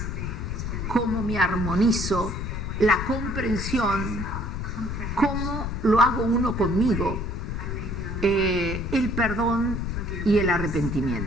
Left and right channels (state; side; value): noise; left; rumble, 4 dB below the sound